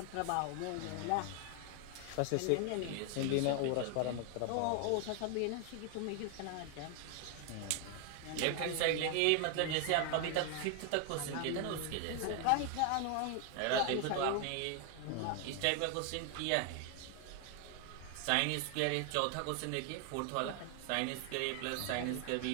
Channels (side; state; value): both; different; correlation 0.00